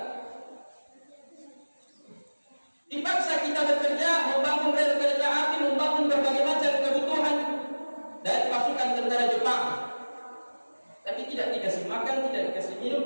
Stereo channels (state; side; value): inverted; both; correlation -1.00